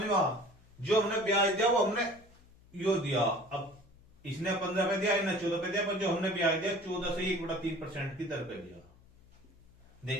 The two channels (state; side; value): noise; left; hum, 27 dB below the sound